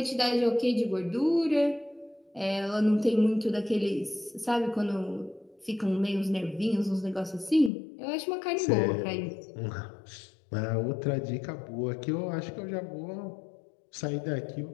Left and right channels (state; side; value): drops out; right; at 7.7 s